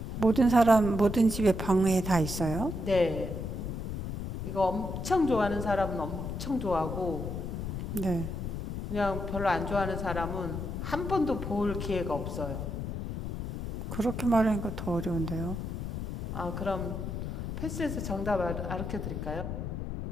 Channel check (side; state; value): left; noise; rumble, 5 dB below the sound